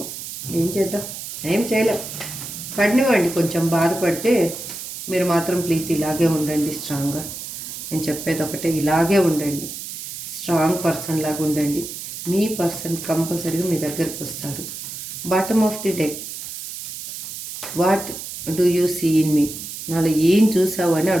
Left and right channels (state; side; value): noise; right; hiss, 9 dB below the sound